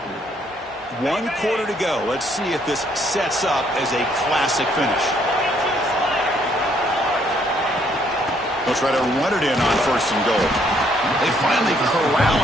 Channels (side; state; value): both; normal; correlation 0.68